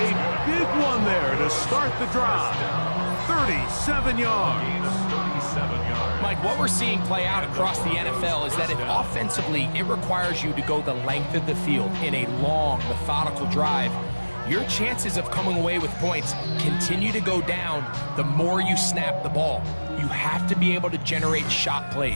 big one there to start the drive. 37 yards. Mike, what we're seeing play out across the NFL is that if offensively it requires you to go the length of the field in a long, methodical drive, your chances of coming away with points continue to go down the more you snap the ball. You have to be able to generate shot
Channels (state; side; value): inverted; both; correlation -1.00